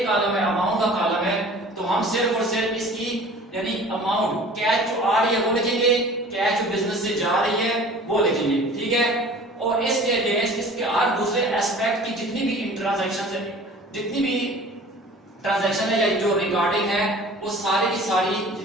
कॉलम है, अमाउंट का कॉलम है, तो हम सिर्फ और सिर्फ इसकी यानी अमाउंट कैश जो आ रही है वो लिखेंगे, कैश जो बिजनेस से जा रही है वो लिखेंगे, ठीक है। और इसके अगेंस्ट इसके हर दूसरे एस्पेक्ट की जितनी भी ट्रांजैक्शन है, जितनी भी ट्रांजैक्शन है या जो रिगार्डिंग है, वो सारी की सारी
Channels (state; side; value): normal; both; correlation 0.45